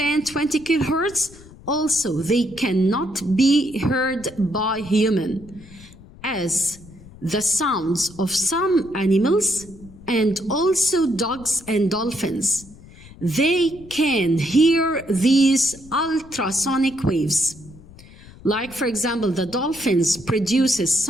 20 kilohertz, also they cannot be heard by human, as the sounds of some animals and also dogs and dolphins. They can hear these ultrasonic waves. Like, for example, the dolphins produces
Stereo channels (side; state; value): left; noise; rumble, 20 dB below the sound